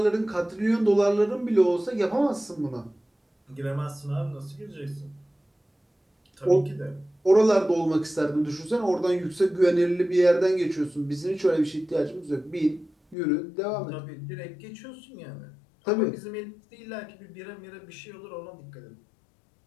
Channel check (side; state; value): right; drops out; at 13.2 s